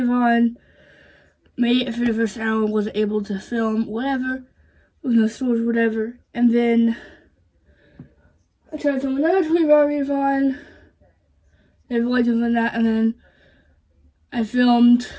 made it for the first hour, wasn't able to film whatever, with no storage, whatever, and then I tried to film another 24-hour Reavon. Never liked doing that, and then I filmed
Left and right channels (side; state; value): both; identical; correlation 1.00